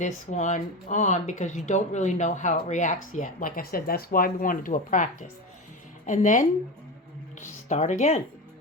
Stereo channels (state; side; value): normal; both; correlation 0.23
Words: one on because you don't really know how it reacts yet. Like I said, that's why we want to do a practice. And then start again.